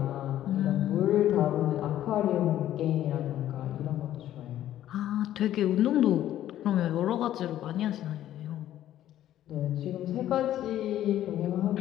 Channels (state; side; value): quieter; right; 12.5 dB